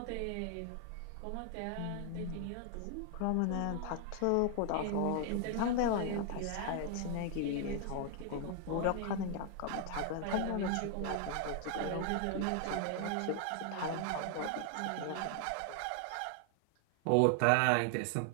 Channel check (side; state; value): both; different; correlation 0.00